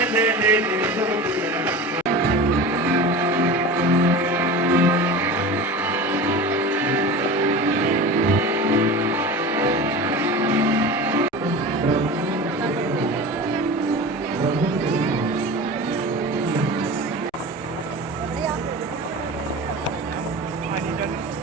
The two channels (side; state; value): both; normal; correlation 0.32